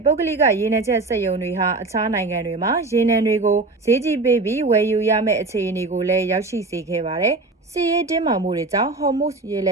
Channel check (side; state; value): left; quieter; 3.4 dB